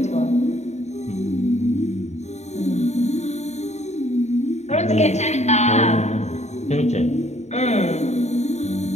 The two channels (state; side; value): late; right; 0.32 ms